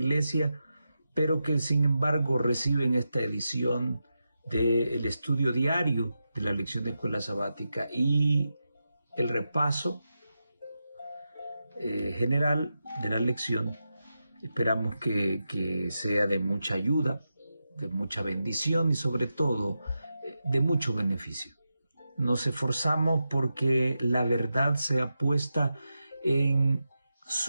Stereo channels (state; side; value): inverted; both; correlation -0.89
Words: pero que sin embargo reciben esta edición del estudio diario de la lección de escuela sabática y el repaso general de la lección. Esperamos que sea de mucha ayuda, de mucha bendición y sobre todo de mucho beneficio. Nos esforzamos porque la verdad sea puesta en